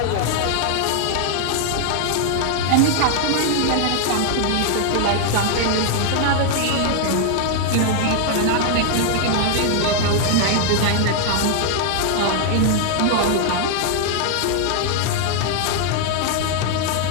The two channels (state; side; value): different; both; correlation 0.00